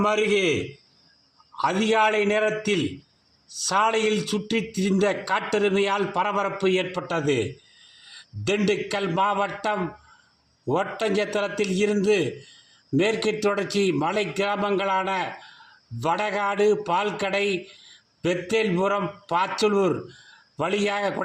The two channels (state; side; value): identical; both; correlation 1.00